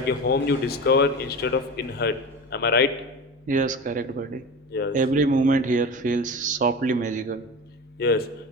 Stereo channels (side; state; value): both; normal; correlation 0.29